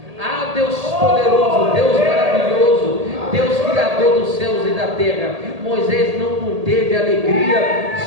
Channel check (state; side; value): late; left; 1.8 ms